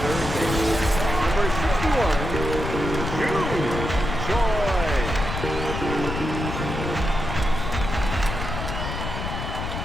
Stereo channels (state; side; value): noise; left; rumble, 5 dB below the sound